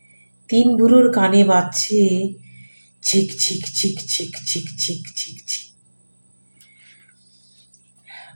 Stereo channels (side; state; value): both; inverted; correlation -1.00